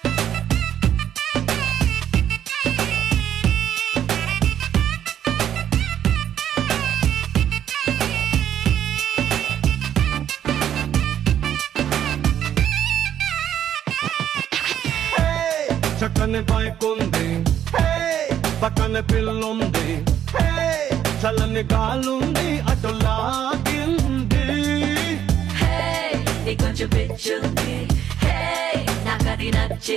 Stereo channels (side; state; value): left; quieter; 10.2 dB